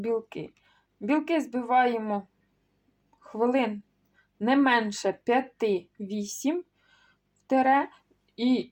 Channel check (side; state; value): both; identical; correlation 1.00